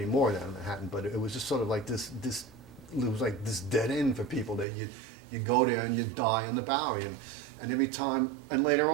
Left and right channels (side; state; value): left; drops out; at 4.7 s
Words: now in Manhattan, but it was just sort of like this it was like this dead end for people that you go there and you die on the Bowery, and every time, and later